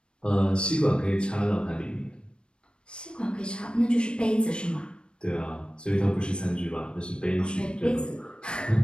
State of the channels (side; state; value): right; late; 0.055 ms